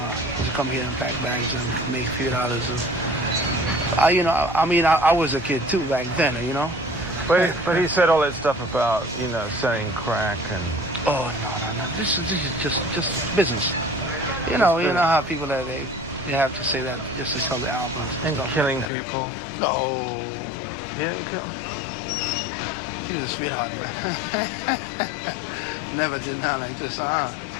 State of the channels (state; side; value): drops out; right; at 18.9 s